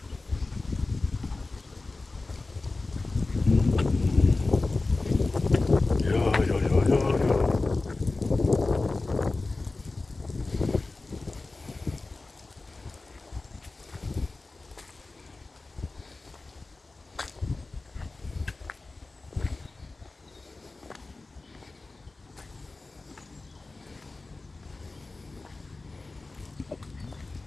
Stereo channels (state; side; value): quieter; right; 3.4 dB